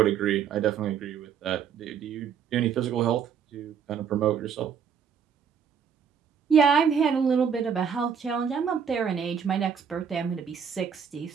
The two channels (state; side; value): quieter; left; 7.3 dB